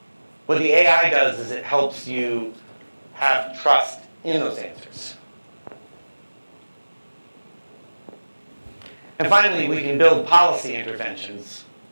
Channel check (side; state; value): both; inverted; correlation -1.00